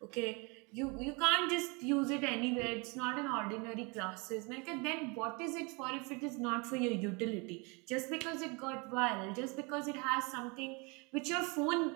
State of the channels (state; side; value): quieter; left; 29.8 dB